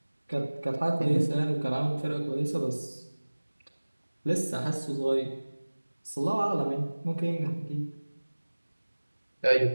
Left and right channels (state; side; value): inverted; both; correlation -1.00